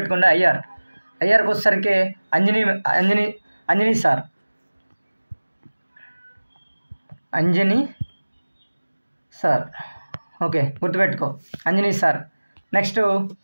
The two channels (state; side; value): inverted; both; correlation -1.00